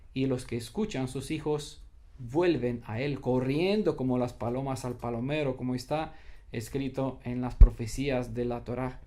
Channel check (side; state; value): both; identical; correlation 1.00